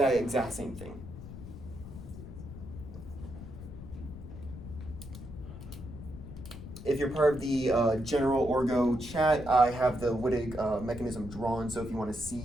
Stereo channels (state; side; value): noise; left; rumble, 12 dB below the sound